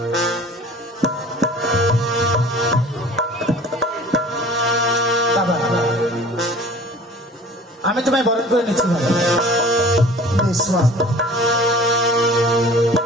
বাবা, আমি তোমায় বরণ করে নিচ্ছি বাবা।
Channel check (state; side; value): normal; both; correlation 0.46